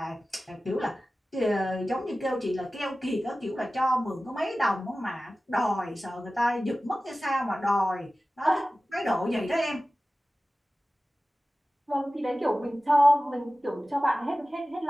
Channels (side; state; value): both; normal; correlation 0.96